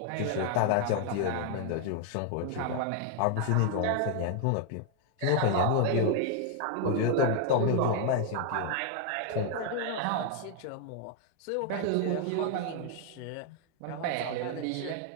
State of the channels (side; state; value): both; different; correlation 0.00